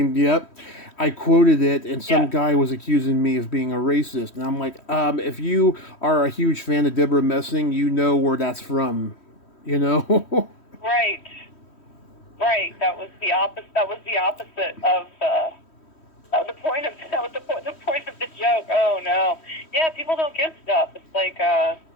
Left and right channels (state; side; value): late; right; 3.1 ms